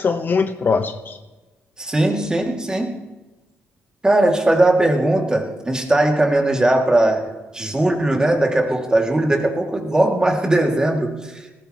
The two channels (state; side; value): normal; both; correlation 0.90